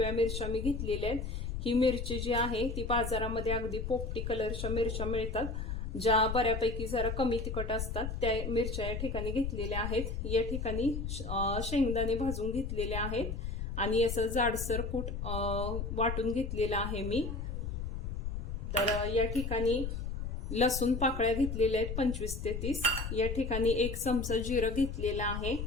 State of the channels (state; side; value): noise; left; rumble, 4 dB below the sound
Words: मिरच्या मी घेतलेल्या आहेत। ही मिरची जी आहे ती बाजारामध्ये अगदी पोपटी कलरच्या मिरच्या मिळतात, ज्या बऱ्यापैकी जरा कमी तिखट असतात, त्या मिरच्या या ठिकाणी घेतलेल्या आहेत। या ठिकाणी शेंगदाणे भाजून घेतलेले आहेत आणि असं जाडसर कूट वाटून घेतलेला आहे मी। तर या ठिकाणी लसूण पाकळ्या घेतलेल्या आहेत 25 ते 30। या ठिकाणी 1 चमचा जिरं घेतलेला आहे।